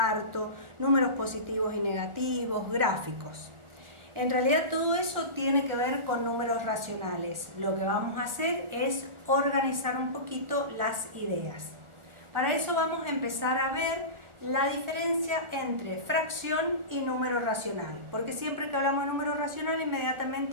números positivos y negativos, gráficos. En realidad todo eso tiene que ver con números racionales. Lo que vamos a hacer es organizar un poquito las ideas. Para eso vamos a empezar a ver la diferencia entre fracción y número racional, porque siempre que hablamos de número racional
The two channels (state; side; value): late; left; 1.4 ms